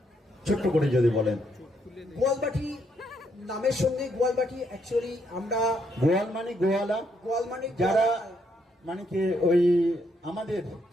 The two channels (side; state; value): both; normal; correlation 0.74